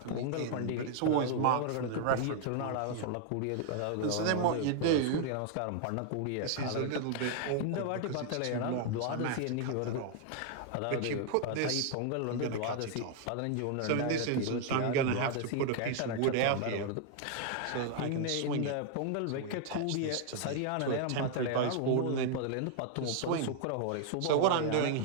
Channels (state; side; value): different; both; correlation 0.00